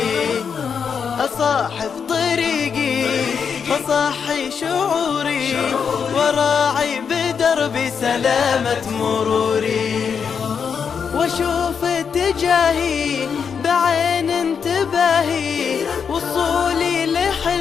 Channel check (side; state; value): right; quieter; 6.6 dB